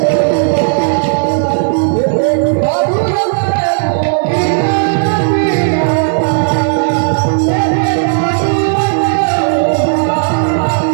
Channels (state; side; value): silent; left; digital silence